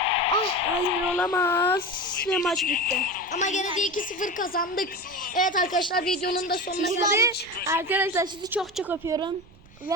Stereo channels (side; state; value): right; noise; rumble, 25 dB below the sound